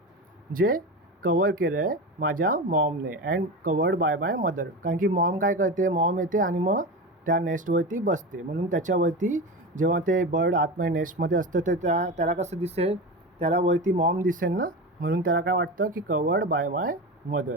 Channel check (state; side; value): normal; both; correlation 0.24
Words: जे कवर केलं आहे माझ्या मॉमने and covered by my mother. कारण की मॉम काय करते? मॉम येते आणि मग त्या नेस्टवरती बसते. म्हणून त्याच्यावरती जेव्हा ते बर्ड आतमध्ये नेस्टमध्ये असतं तर त्याला कसं दिसेल? त्याला वरती मॉम दिसेल ना. म्हणून त्याला काय वाटतं की कवर्ड बाय माय मदर.